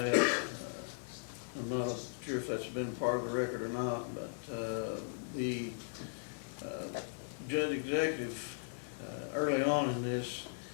I'm not sure if that's been part of the record or not, but the judge executive early on in this,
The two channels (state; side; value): silent; right; 53 dB below the other